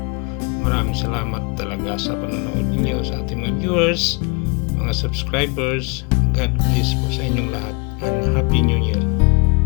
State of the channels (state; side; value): quieter; right; 31.3 dB